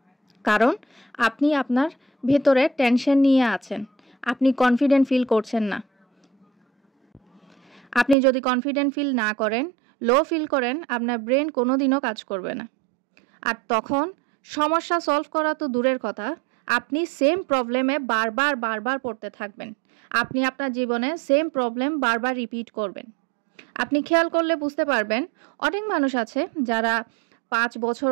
কারণ আপনি আপনার ভেতরে টেনশন নিয়ে আছেন, আপনি কনফিডেন্ট ফিল করছেন না। আপনি যদি কনফিডেন্ট ফিল না করেন, লো ফিল করেন, আপনার ব্রেন কোনোদিনও কাজ করবে না। আর তখন সমস্যা সলভ করা তো দূরের কথা, আপনি সেম প্রবলেমে বারবার পড়তে থাকবেন। আপনি আপনার জীবনে সেম প্রবলেম বারবার রিপিট করবেন। আপনি খেয়াল করলে বুঝতে পারবেন, অনেক মানুষ আছে যারা 5 বছর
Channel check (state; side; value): drops out; left; at 8.2 s